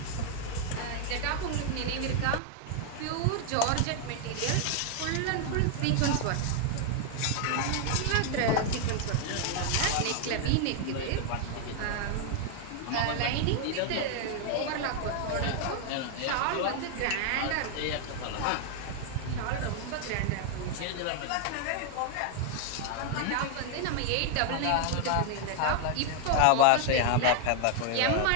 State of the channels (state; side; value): different; both; correlation 0.00